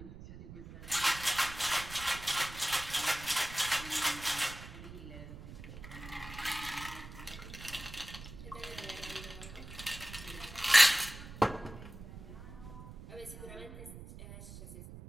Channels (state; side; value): noise; right; rumble, 13 dB below the sound